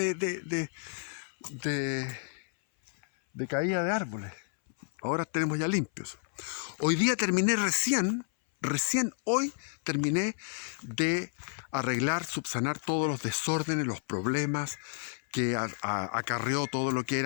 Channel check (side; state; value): right; silent; 57 dB below the other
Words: caída de árboles. Ahora tenemos ya limpios. Hoy día terminé recién hoy terminé de arreglar, subsanar todos los desórdenes, los problemas que acarreó todo lo que